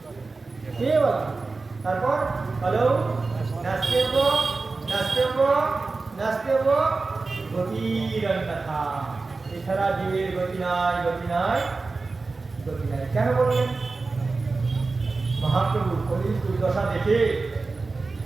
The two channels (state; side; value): quieter; left; 3.9 dB